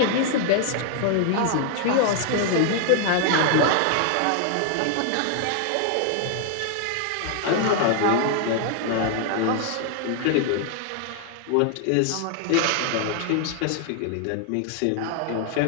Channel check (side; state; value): both; different; correlation 0.00